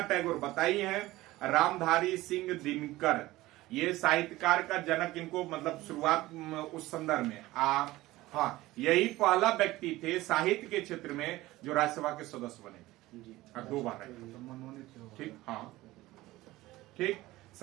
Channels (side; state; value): left; quieter; 18.0 dB